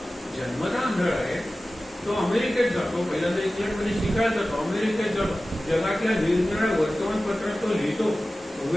जन्मता आंधळा आहे, तो अमेरिकेत जातो, पहिल्यांदा इंग्लंडमध्ये शिकायला जातो, अमेरिकेत जातो, जगातल्या निरनिराळ्या वर्तमानपत्रात तो लिहितो.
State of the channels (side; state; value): both; normal; correlation 0.96